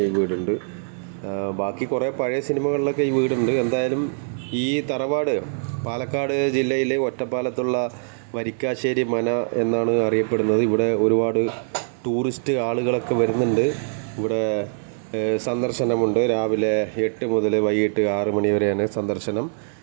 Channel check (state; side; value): silent; left; digital silence